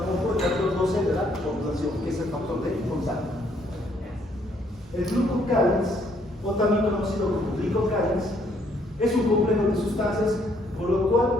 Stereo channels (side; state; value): both; normal; correlation 0.68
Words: el factor 12 de la coagulación, que es el factor de contacto. El glucocálix, o también conocido como glicocálix, es un complejo de sustancias por lo cual